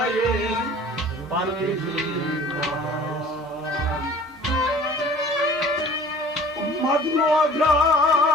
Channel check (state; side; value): normal; both; correlation 0.47